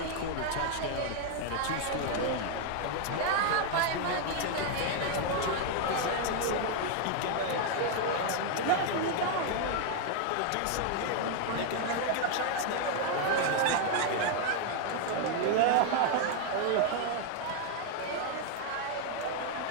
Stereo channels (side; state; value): both; different; correlation 0.00